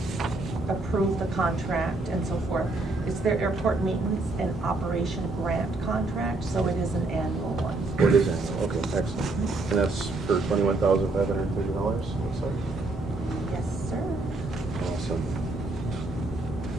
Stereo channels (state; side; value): quieter; left; 3.1 dB